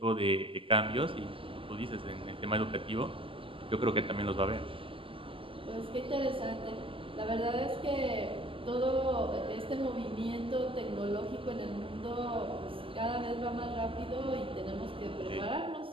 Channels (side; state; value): left; late; 0.25 ms